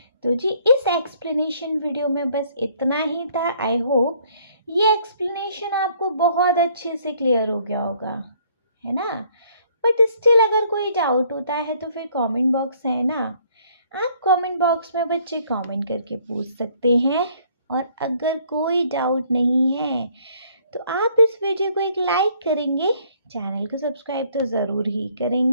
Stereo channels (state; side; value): inverted; both; correlation -0.62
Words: तो जी इस एक्सप्लेनेशन वीडियो में बस इतना ही था। आई होप ये एक्सप्लेनेशन आपको बहुत अच्छे से क्लियर हो गया होगा, है ना। बट स्टिल अगर कोई डाउट होता है तो फिर कमेंट बॉक्स है ना, आप कमेंट बॉक्स में बच्चे कमेंट करके पूछ सकते हैं। और अगर कोई डाउट नहीं है तो आप इस वीडियो को एक लाइक करेंगे, चैनल को सब्सक्राइब तो ज़रूर ही